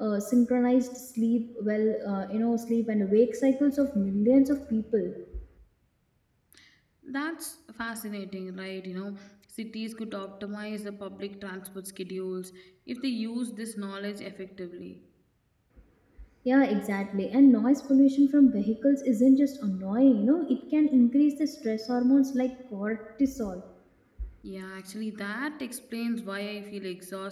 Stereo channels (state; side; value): identical; both; correlation 1.00